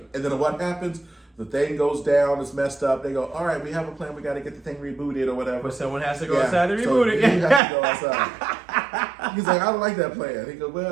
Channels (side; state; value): left; drops out; at 7.6 s